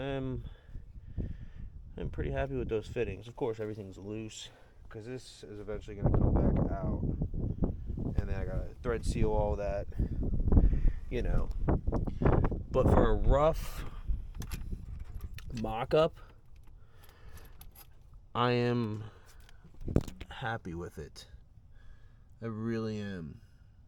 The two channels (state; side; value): identical; both; correlation 1.00